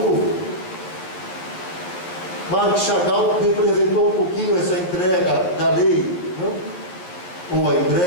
Mark Chagall representou um pouquinho essa entrega da lei, não? Ou a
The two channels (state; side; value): late; right; 11 ms